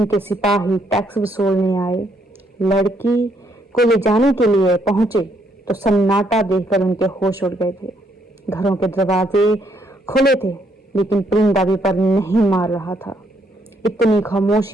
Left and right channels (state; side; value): normal; both; correlation 0.72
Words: के सिपाही टैक्स वसूलने आए, लड़की को ले जाने के लिए पहुंचे तो सन्नाटा देखकर उनके होश उड़ गए थे। घरों के दरवाजे खुले थे, लेकिन परिंदा भी पर नहीं मार रहा था। इतनी